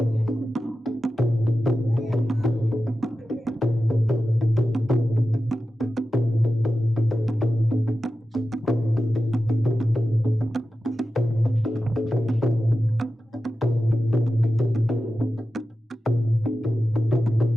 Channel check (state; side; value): normal; both; correlation 0.92